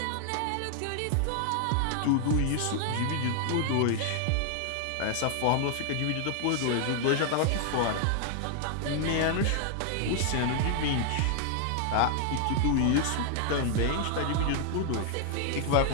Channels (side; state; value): both; different; correlation 0.00